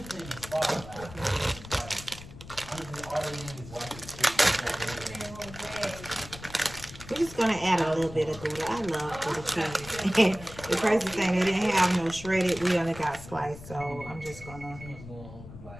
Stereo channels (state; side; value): noise; left; rumble, 15 dB below the sound